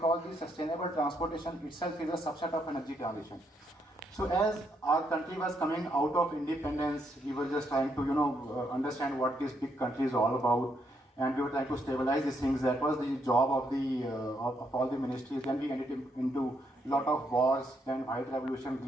the sustainable transportation itself is a subset of energy transition. So as our country was coming out of independence, we were just trying to understand what this big country is all about, and we were trying to stabilize these things. That was the job of the of all the ministries. Then we ended into a lot of wars, then white revolution,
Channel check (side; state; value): both; normal; correlation 0.75